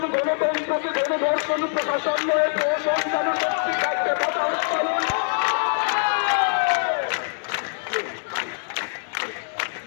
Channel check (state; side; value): silent; right; digital silence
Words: গণতন্ত্রকে গণধর্ষণ, প্রশাসন নয় প্রশাসন যেন শক্তি থাকতে